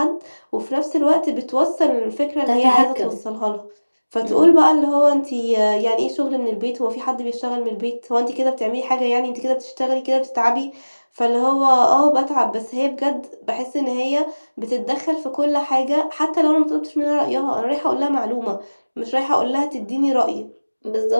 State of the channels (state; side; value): inverted; both; correlation -1.00